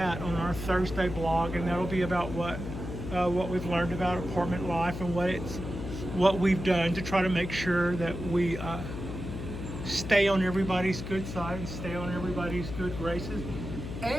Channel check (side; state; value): left; noise; hum, 7 dB below the sound